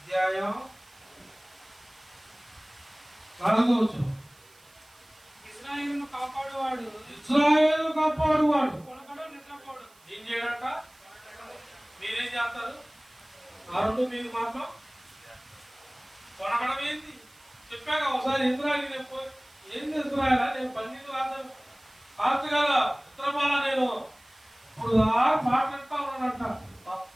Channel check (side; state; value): right; noise; hiss, 28 dB below the sound